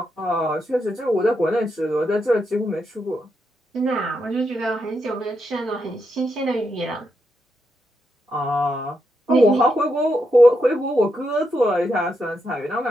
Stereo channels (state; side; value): normal; both; correlation 0.82